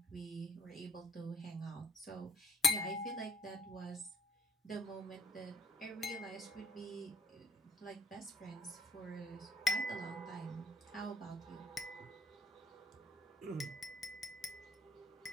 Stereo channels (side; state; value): both; normal; correlation 0.61